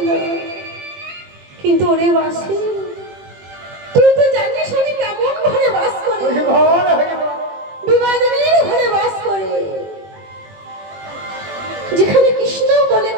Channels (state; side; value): late; left; 21 ms